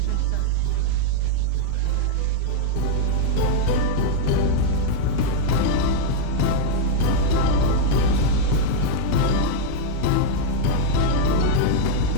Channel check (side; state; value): both; different; correlation -0.01